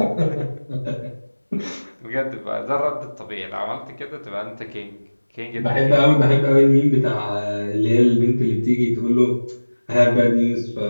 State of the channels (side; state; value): both; inverted; correlation -1.00